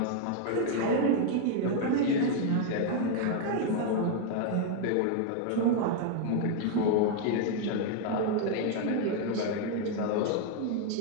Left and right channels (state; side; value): different; both; correlation 0.00